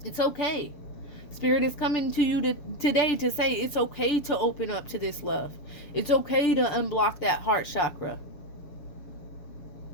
It's okay. Spirit is coming to you today to say it's okay to open up to this love. It's okay to unblock that heart chakra.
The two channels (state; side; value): late; right; 7.1 ms